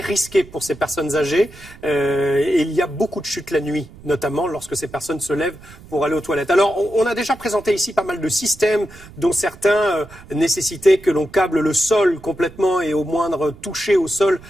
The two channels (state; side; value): noise; right; rumble, 20 dB below the sound